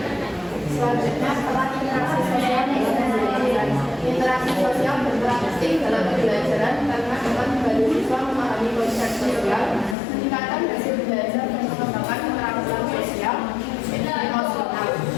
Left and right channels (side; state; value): right; drops out; at 10.0 s